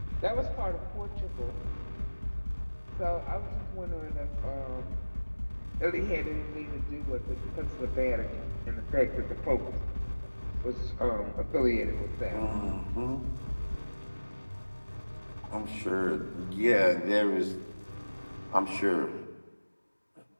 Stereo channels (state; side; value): inverted; both; correlation -1.00